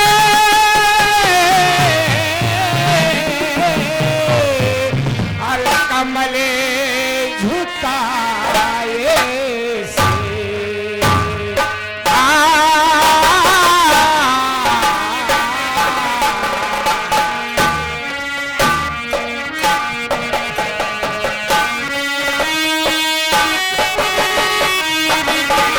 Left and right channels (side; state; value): both; identical; correlation 1.00